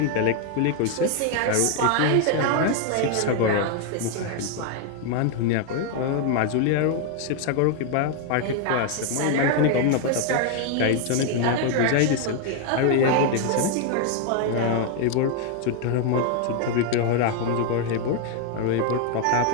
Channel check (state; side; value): different; both; correlation 0.00